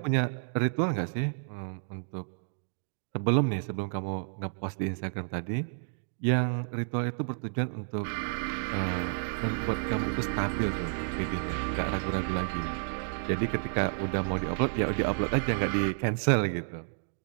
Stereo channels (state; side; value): silent; left; digital silence